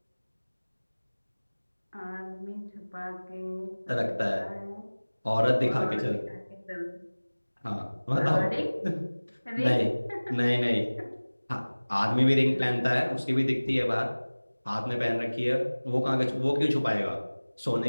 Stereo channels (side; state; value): both; inverted; correlation -1.00